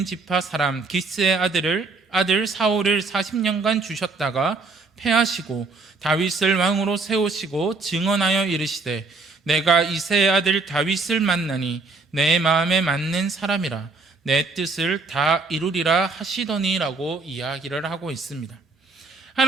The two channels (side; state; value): left; quieter; 3.9 dB